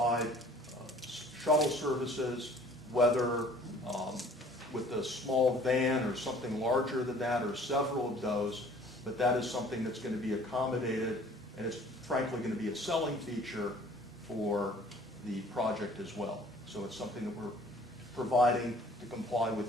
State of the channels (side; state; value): both; normal; correlation 0.52